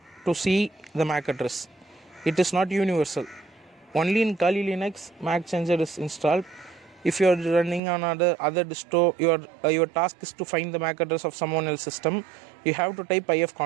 to see the MAC address. It is not universal. Only in Kali Linux Mac changer is installed. If you are running on other disto, your task is to find the MAC address of someone else's system. You have to type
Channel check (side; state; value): left; drops out; at 7.8 s